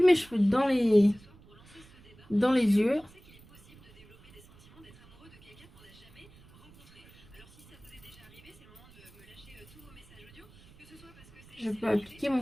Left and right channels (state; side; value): noise; right; rumble, 24 dB below the sound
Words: mes cheveux dans les yeux. Je peux appliquer